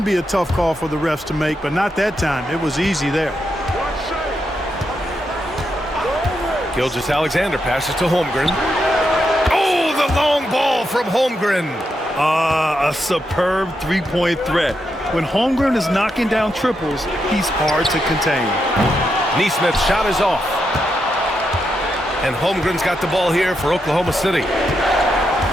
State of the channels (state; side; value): normal; both; correlation 0.83